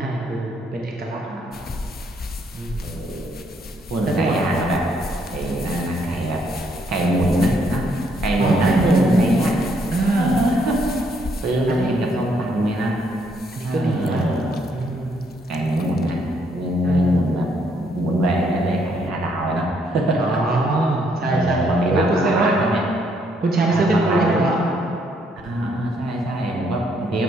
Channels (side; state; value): both; normal; correlation 0.71